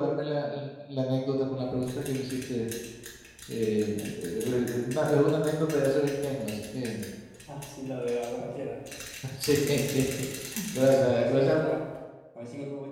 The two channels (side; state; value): both; identical; correlation 1.00